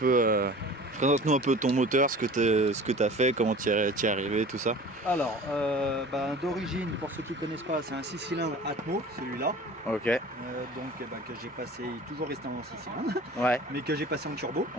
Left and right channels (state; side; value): normal; both; correlation 0.42